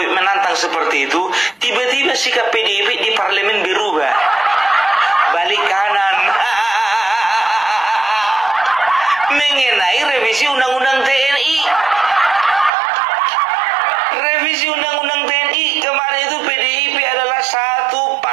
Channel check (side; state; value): left; drops out; at 12.7 s